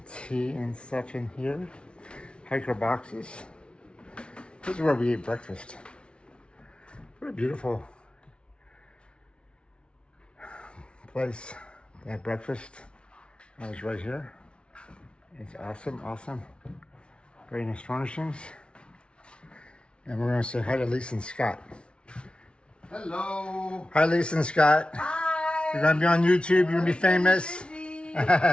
tea and stuff in here. Hiker boxes. This is where we eat breakfast. What a beautiful place. They have breakfast. I was right here. It's awesome, awesome. Very nice furnishings. And we're going to say hi to Lisa and Scott. Hello. Hi, Lisa and Scott. Hi. You're going to be on YouTube. You're going to be famous.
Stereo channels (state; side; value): late; right; 0.058 ms